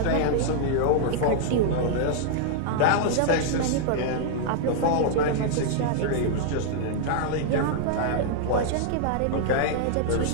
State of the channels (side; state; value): both; different; correlation -0.01